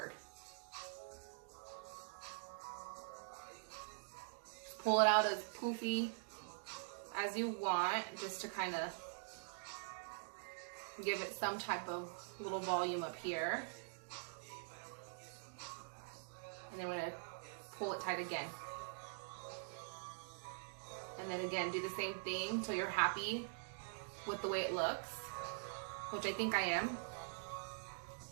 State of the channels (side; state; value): left; silent; digital silence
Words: Pull it out as poofy as you want, just to kind of give it some type of little volume up here. And then we're gonna pull it tight again. And then again, do the same thing until you're happy with the way it looks, which I think I am.